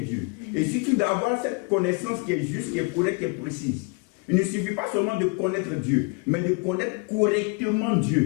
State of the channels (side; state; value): right; quieter; 30.4 dB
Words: Et surtout d'avoir cette connaissance qui est juste, qui est correcte, qui est précise. Il ne suffit pas seulement de connaître Dieu, mais de connaître correctement